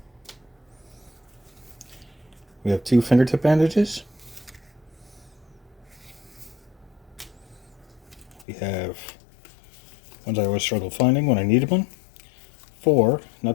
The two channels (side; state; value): right; drops out; at 8.5 s